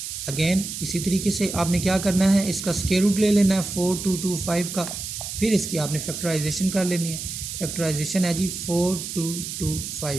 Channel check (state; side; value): noise; right; hiss, 7 dB below the sound